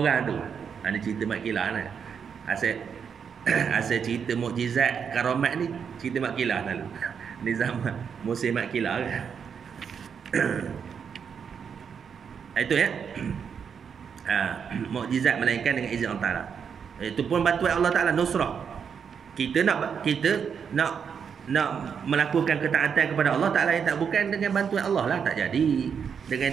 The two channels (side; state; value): left; quieter; 7.0 dB